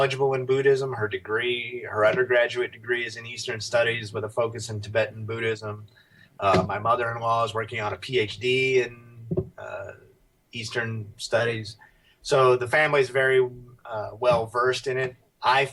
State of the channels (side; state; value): both; identical; correlation 1.00